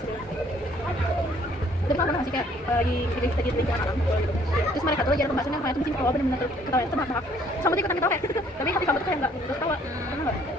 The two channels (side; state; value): both; normal; correlation 0.61